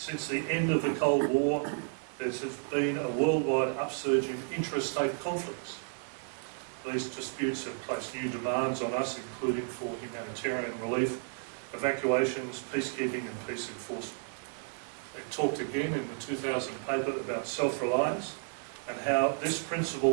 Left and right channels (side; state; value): left; silent; 56 dB below the other